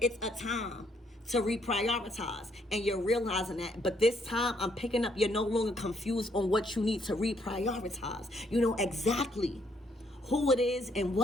a time to reprioritize, and you're realizing that. But this time, I'm picking up, you're no longer confused on what you need to reprioritize. You know exactly who it is and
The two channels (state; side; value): normal; both; correlation 0.70